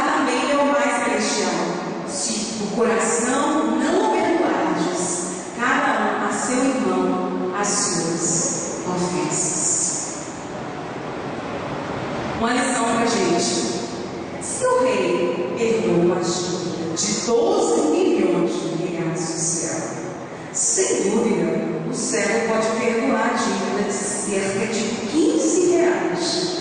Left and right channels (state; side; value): identical; both; correlation 1.00